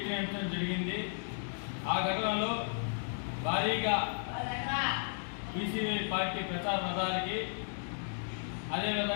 జరిగింది. ఆ ఘటనలో భారీగా బీసీవై పార్టీ ప్రచార రథాలకి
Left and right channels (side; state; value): right; silent; digital silence